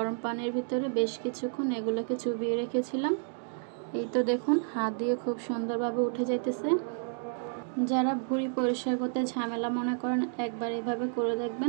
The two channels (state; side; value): silent; left; digital silence